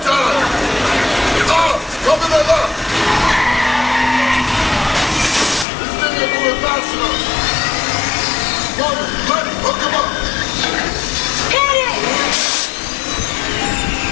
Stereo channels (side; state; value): right; drops out; at 5.7 s